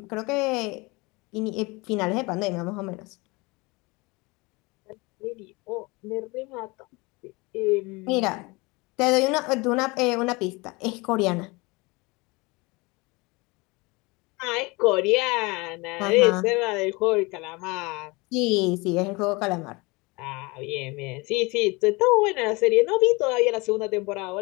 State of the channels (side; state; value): right; quieter; 25.5 dB